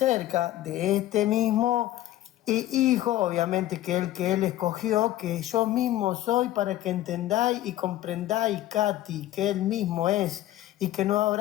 de este mismo Hijo, obviamente que él escogió, que yo mismo soy, para que entendáis y comprendáis, Katy, que él mismo es, y que no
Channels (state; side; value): quieter; right; 14.5 dB